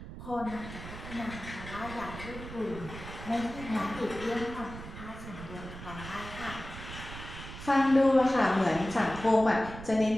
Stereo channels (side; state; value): right; noise; rumble, 12 dB below the sound